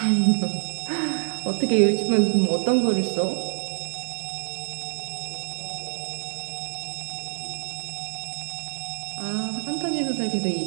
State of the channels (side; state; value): left; silent; digital silence